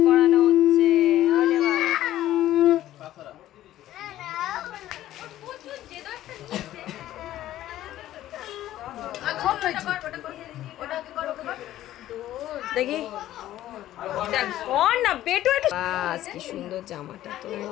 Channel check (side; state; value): right; quieter; 13.7 dB